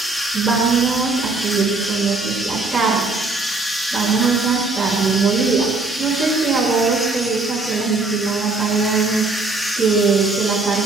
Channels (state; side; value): quieter; left; 3.5 dB